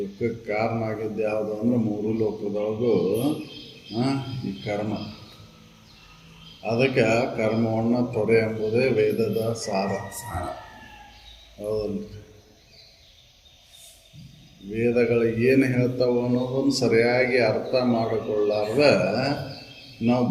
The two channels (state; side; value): identical; both; correlation 1.00